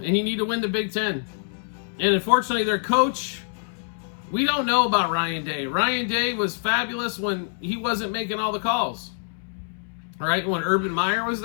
and you need to win the Big Ten. And unfortunately, their coach, we don't know about Ryan Day. Ryan Day was fabulous when he wasn't making all the calls. Right? When Urban Meyer was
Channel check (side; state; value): right; silent; 62 dB below the other